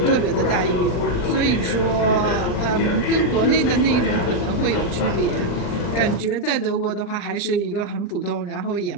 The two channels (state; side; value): late; right; 39 ms